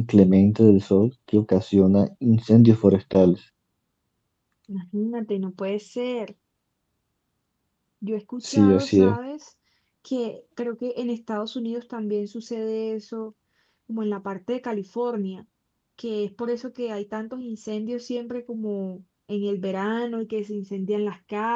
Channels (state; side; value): identical; both; correlation 1.00